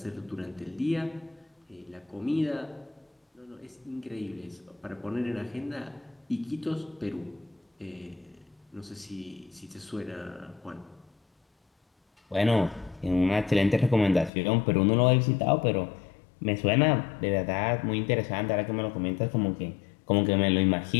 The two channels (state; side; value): drops out; right; at 14.3 s